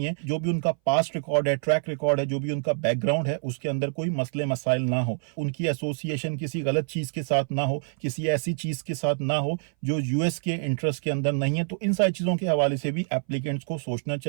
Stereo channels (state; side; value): silent; left; 59 dB below the other